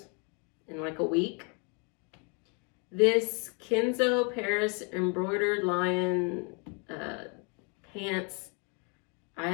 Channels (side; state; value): right; quieter; 35.4 dB